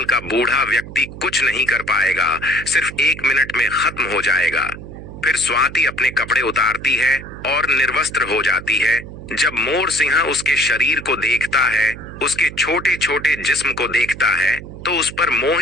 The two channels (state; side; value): noise; right; hum, 13 dB below the sound